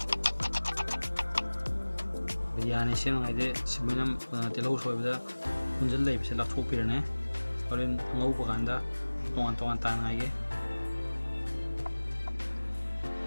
biryani sem ngai de simenam telau soi bada kunjal lai bise lak thok pirane horen ngau pa ganda tongan tongan tan ngai ge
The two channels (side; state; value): both; inverted; correlation -1.00